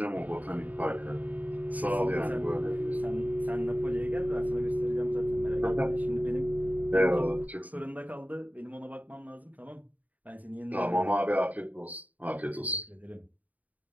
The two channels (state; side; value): late; left; 0.076 ms